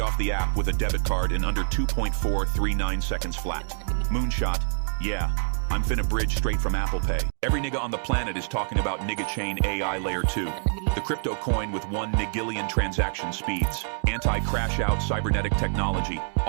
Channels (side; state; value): left; silent; 59 dB below the other